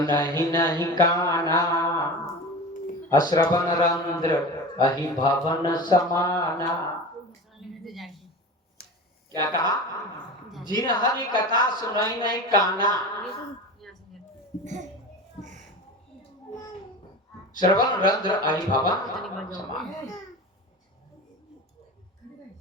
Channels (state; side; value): normal; both; correlation 0.31